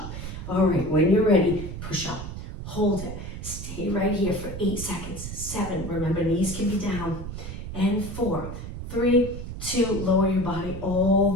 All right, when you're ready, push up. Hold it. Stay right here for 8 seconds. 7, remember knees can be down. And 4, 3, 2, lower your body all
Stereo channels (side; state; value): right; noise; rumble, 8 dB below the sound